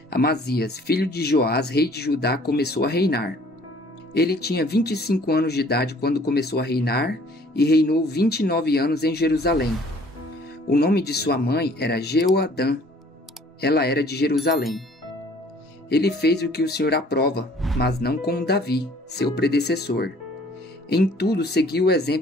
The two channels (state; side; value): normal; both; correlation 0.56